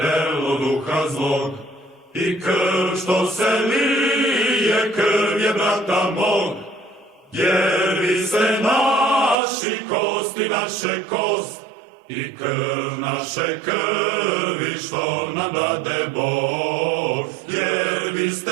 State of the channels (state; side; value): drops out; left; at 9.3 s